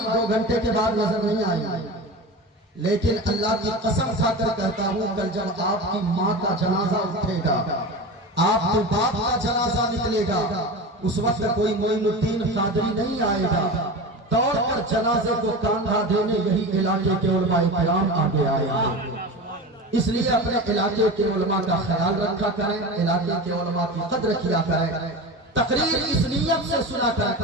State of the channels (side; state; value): both; normal; correlation 0.28